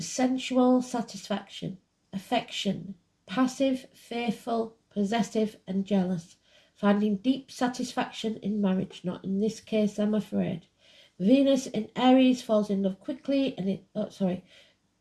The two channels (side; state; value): both; identical; correlation 1.00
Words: satisfaction, affection, passive, faithful, possessive and jealous, finding deep satisfaction in marriage, not in this case, I'm afraid. Venus in Aries falls in love quickly